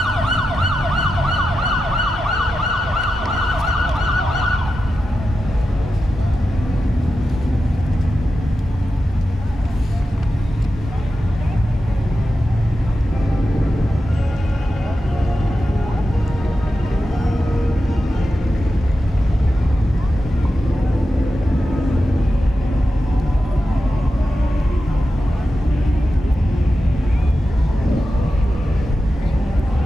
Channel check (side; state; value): both; normal; correlation 0.91